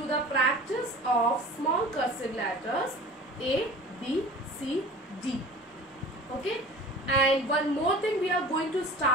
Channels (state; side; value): normal; both; correlation 0.41